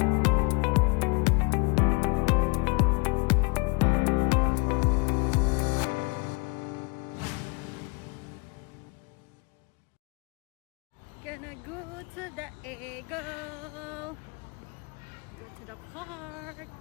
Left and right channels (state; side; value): quieter; right; 30.8 dB